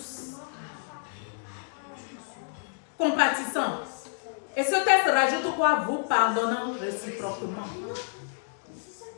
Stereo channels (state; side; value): silent; right; 59 dB below the other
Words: Compatissant. Et ce texte rajoute quoi? Vous pardonnant réciproquement.